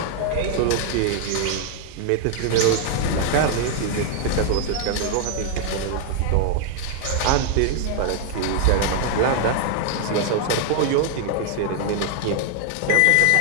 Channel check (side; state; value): both; different; correlation 0.00